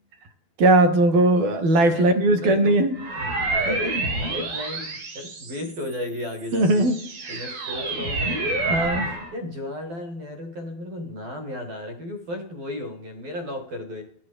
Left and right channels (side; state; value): left; late; 12 ms